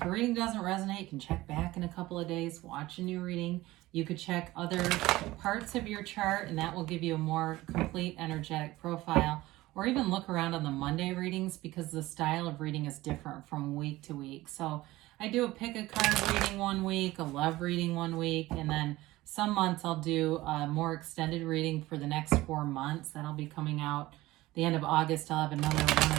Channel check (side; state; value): left; quieter; 18.1 dB